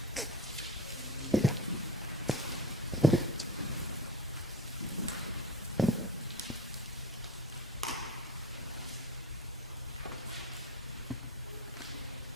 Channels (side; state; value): both; normal; correlation 0.35